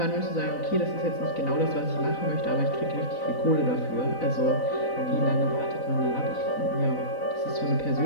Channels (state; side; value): late; right; 4.0 ms